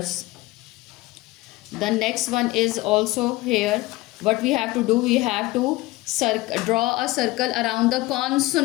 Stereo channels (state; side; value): quieter; right; 19.7 dB